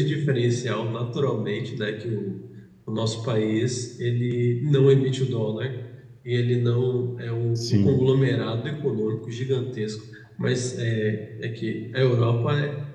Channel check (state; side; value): identical; both; correlation 1.00